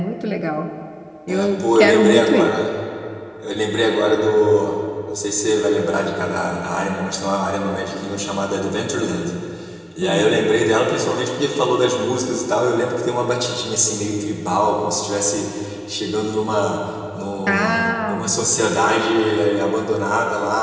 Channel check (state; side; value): identical; both; correlation 1.00